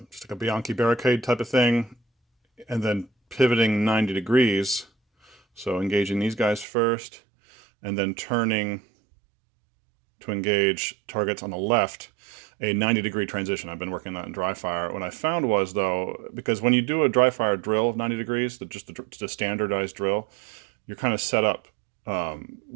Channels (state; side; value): drops out; left; at 6.7 s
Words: just like a Bianchi barricade type of thing, and then pivoting 90 degrees. So engaging these guys first, and then turning to engage targets on the left, a 90-degree transition. I've been working that in dry fire. What I found was, though, because when you do a dry fire drill of 90 degrees, just the standardized drill, you're kind of set up